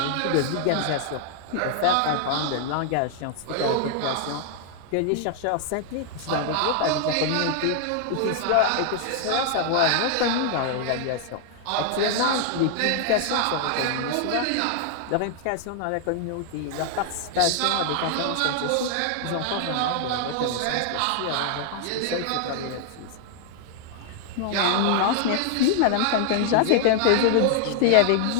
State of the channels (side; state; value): both; different; correlation 0.00